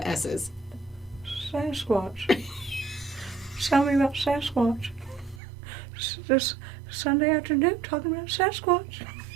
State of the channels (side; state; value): left; drops out; at 5.4 s